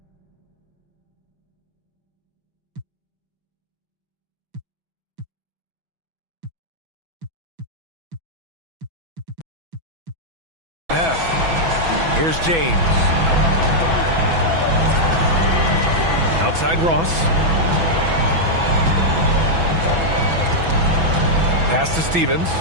Here's James. Outside Ross. Pass to Stevens.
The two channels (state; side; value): late; left; 6.0 ms